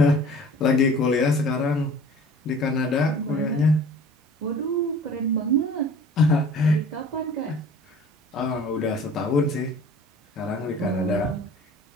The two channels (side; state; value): both; normal; correlation 0.46